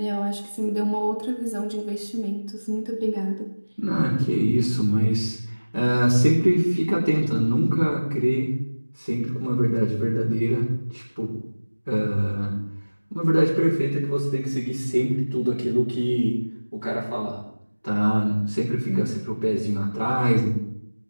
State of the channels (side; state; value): both; inverted; correlation -1.00